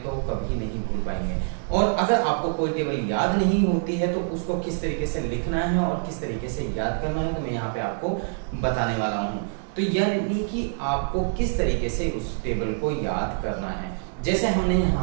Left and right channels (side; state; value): left; silent; digital silence